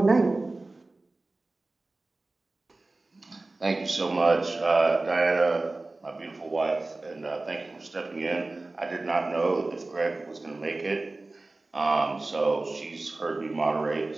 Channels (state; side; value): quieter; left; 3.1 dB